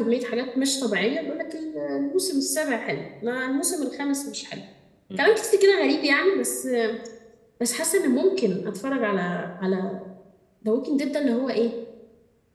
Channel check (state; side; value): identical; both; correlation 1.00